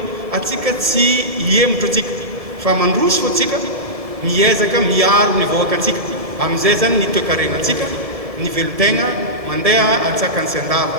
atsika tsy hiemotro atsika fa mandroso fo atsika miezaka miaro ny voaka atsika amin'izay zany ny toe-karena atsika ny velotegna mandeha antsakany sy andava.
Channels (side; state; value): left; late; 1.6 ms